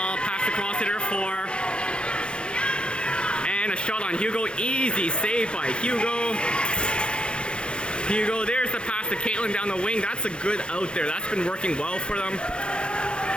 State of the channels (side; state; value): right; late; 0.054 ms